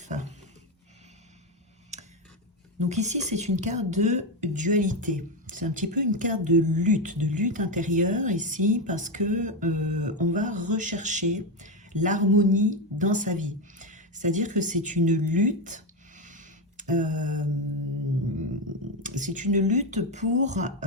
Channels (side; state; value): both; normal; correlation 0.10